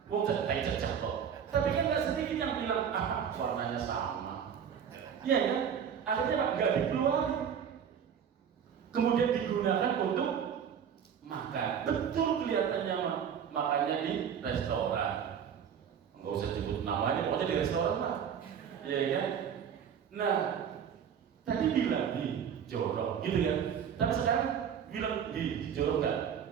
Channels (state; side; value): quieter; left; 8.0 dB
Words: Mau teh cecak kok. Tapi kan nggak sedikit yang bilang warnanya sama. Iya kan? Akhirnya nggak dikeluarin. Kemudian digunakan untuk makan. Betul kelihatannya makannya di restoran. Nggak usah sebut namanya, pokoknya di restoran lah. Iya kan? Nah, tadi bilang jorok, gitu kan? Tapi sekarang bilang jorok nggak?